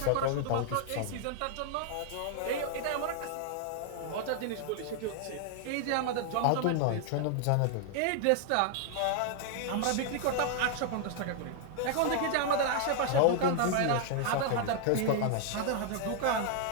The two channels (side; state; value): both; different; correlation 0.00